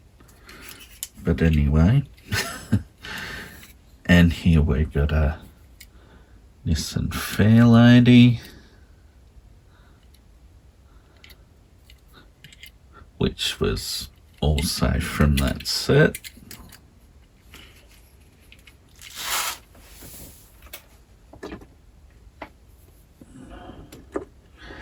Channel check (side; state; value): both; identical; correlation 1.00